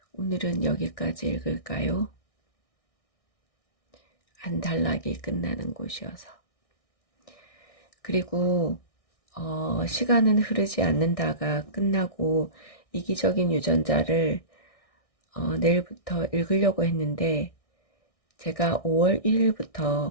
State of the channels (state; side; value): late; right; 1.6 ms